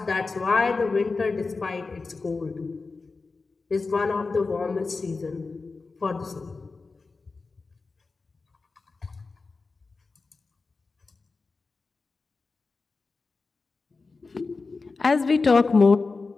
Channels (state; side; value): quieter; right; 4.1 dB